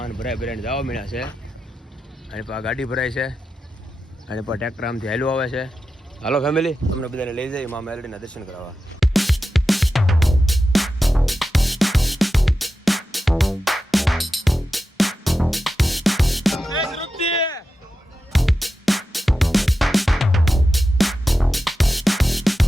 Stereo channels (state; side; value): normal; both; correlation 0.91